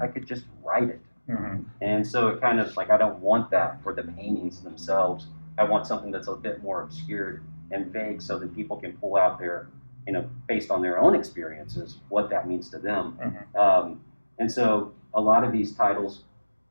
could just write it. Mm-hmm. And so it kind of like, I don't want that for the paintings themselves. I want something that's a bit more obscured and vague so that people can pull out their, you know, based on their own experiences, what that means to them. Mm-hmm. And so a lot of these titles,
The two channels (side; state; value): both; inverted; correlation -1.00